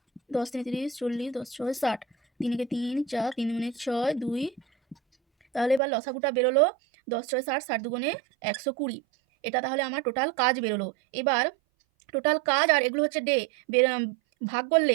10 3 30 40, 10 6 60, 3 কে 3 4, 3 দুগুণে 6 2। তাহলে এবার লসাগুটা বেরোলো 10 6 60, 60 দুগুণে 120। এটা তাহলে আমার টোটাল কাজ বেরোলো। এবার টোটাল কাজ আর এগুলো হচ্ছে ডে, ভাগ করলে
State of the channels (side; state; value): left; drops out; at 5.8 s